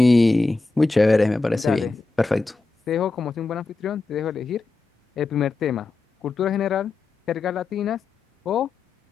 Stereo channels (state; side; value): quieter; right; 3.6 dB